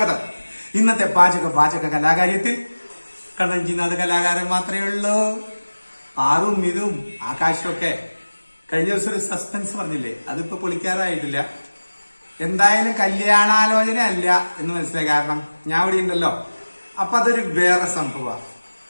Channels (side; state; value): both; inverted; correlation -1.00